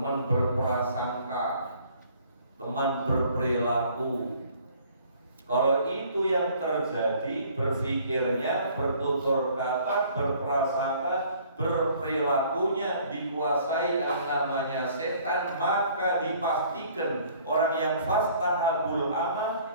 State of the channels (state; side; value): inverted; both; correlation -0.56